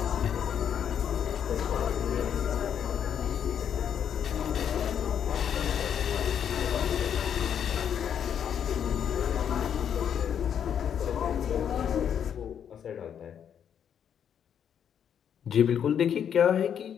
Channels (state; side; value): quieter; right; 8.6 dB